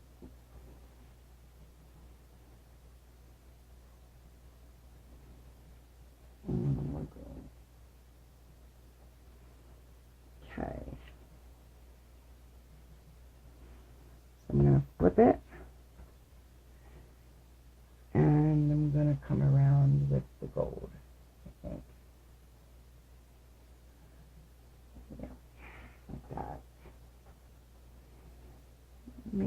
And a little more green. Okay. So I'm going to flip it. And I'm going to come around with the gold, I think. Yeah, like that.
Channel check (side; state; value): both; identical; correlation 1.00